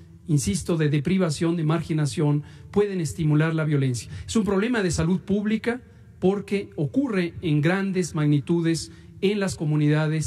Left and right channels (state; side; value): identical; both; correlation 1.00